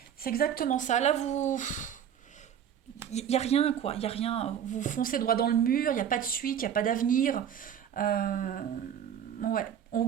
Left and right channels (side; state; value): left; quieter; 9.1 dB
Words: C'est exactement ça. Là, vous... Il n'y a rien, quoi. Il n'y a rien. Vous foncez droit dans le mur, il n'y a pas de suite, il n'y a pas d'avenir. Euh, Ouais. On